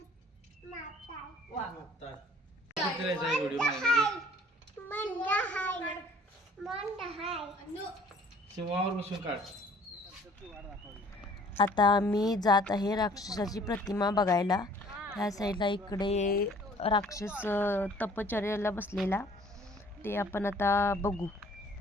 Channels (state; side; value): normal; both; correlation 0.54